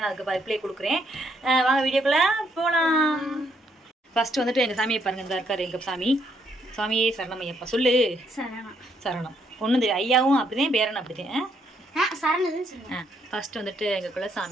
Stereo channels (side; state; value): both; normal; correlation 0.72